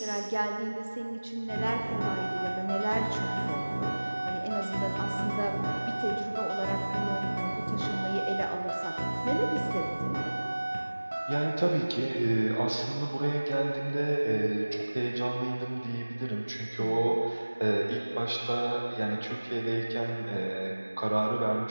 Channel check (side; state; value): both; inverted; correlation -1.00